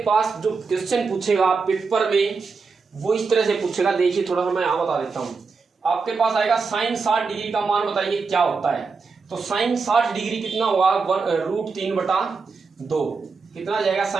पास जो क्वेश्चन पूछेगा पेपर में वो इस तरह से पूछेगा। देखिए थोड़ा सा मैं यहाँ बता देता हूँ। आपके पास आएगा साइन 60 डिग्री का मान बताइए क्या होता है। तो साइन 60 डिग्री कितना होगा √3/2 कितना जाएगा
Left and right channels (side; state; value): left; quieter; 4.8 dB